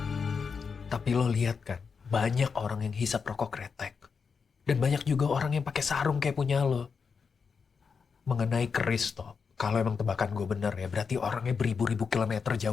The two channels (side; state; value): right; quieter; 5.6 dB